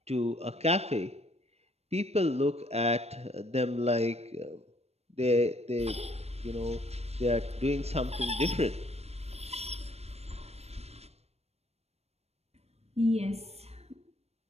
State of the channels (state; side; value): late; left; 0.31 ms